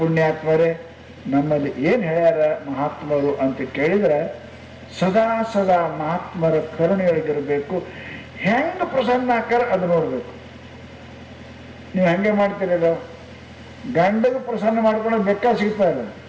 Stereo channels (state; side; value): identical; both; correlation 1.00